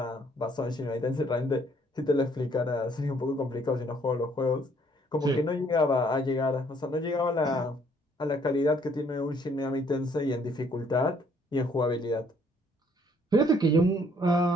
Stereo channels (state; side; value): normal; both; correlation 0.64